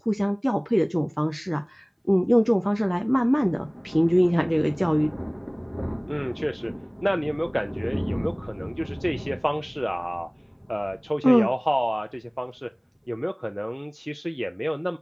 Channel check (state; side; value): identical; both; correlation 1.00